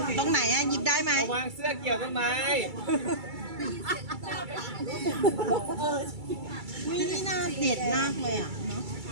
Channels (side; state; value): left; late; 2.3 ms